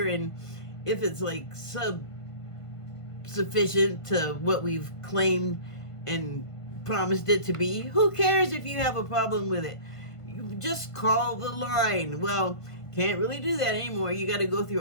and if it's like sufficient to what we've claimed and promised it to be, who cares if you have a problem with it? You just call the line. Well, can't really do that anymore. You got to go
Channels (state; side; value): late; right; 1.5 ms